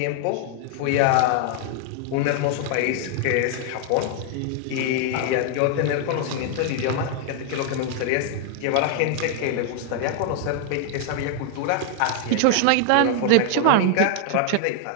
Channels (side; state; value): both; different; correlation 0.00